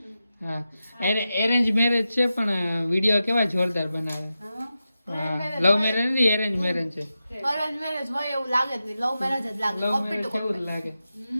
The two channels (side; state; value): both; inverted; correlation -0.91